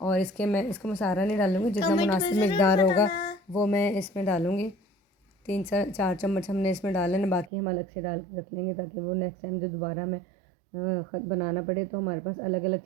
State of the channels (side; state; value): left; drops out; at 7.5 s